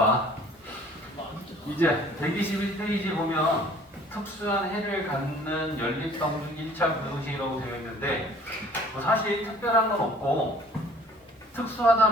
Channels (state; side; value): normal; both; correlation 0.52